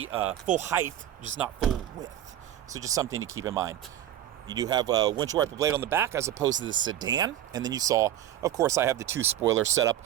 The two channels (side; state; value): left; quieter; 11.7 dB